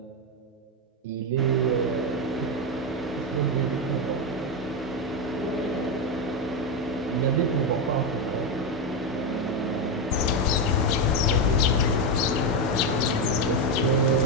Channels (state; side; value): normal; both; correlation 0.09